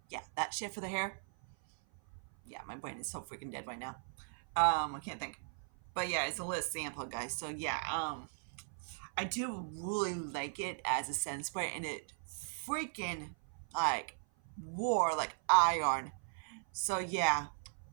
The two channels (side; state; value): left; silent; 52 dB below the other